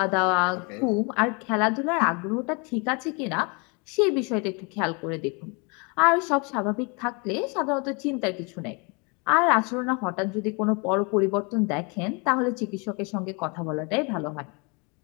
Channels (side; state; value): right; quieter; 31.9 dB